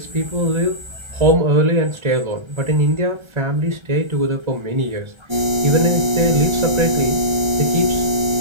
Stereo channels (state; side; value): late; left; 1.4 ms